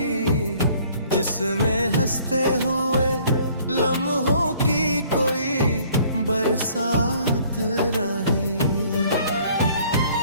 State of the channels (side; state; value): both; inverted; correlation -0.57